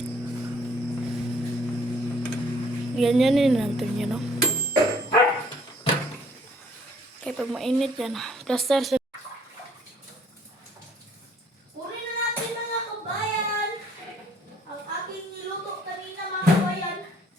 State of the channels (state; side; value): normal; both; correlation 0.60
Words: Ganyan yun natin yun, no? Kaya pag mainit yan, plaster sa... Kunin na natin mga kabayan. Ang aking niluto kanina mga kabayan.